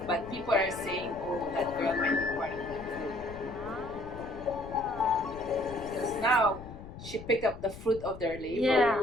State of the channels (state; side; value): noise; left; rumble, 14 dB below the sound